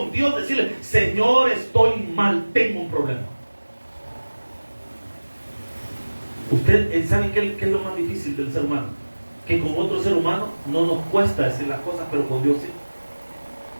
Dios decirle, Señor, estoy mal, tengo un problema. Usted sabe qué es lo más difícil del ser humano, que con otro ser humano no nos cuesta decir las cosas, pero con Dios sí.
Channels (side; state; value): both; inverted; correlation -1.00